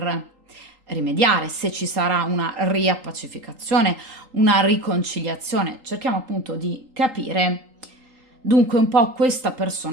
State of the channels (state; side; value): late; left; 3.8 ms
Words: rimediare, se ci sarà una riappacificazione, una riconciliazione. Cerchiamo appunto di capire dunque un po' questa